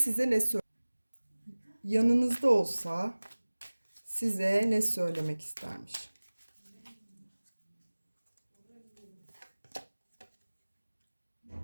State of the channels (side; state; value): both; inverted; correlation -1.00